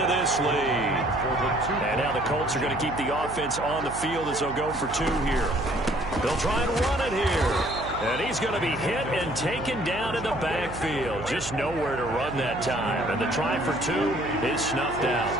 this lead. And now the Colts are going to keep the offense on the field as they'll go for 2 here. They'll try and run it here. And he's going to be hit and taken down in the backfield. Just nowhere to run that time. And the try for 2 is snuffed out.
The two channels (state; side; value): noise; right; hum, 11 dB below the sound